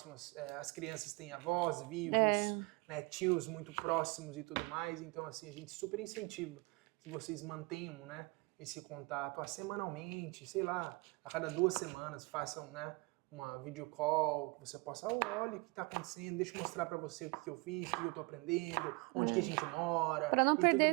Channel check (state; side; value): quieter; left; 27.0 dB